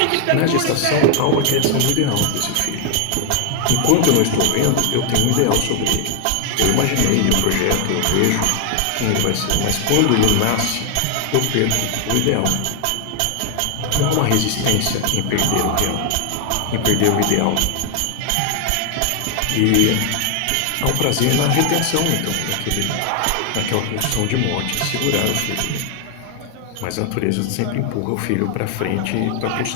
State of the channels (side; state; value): both; different; correlation 0.00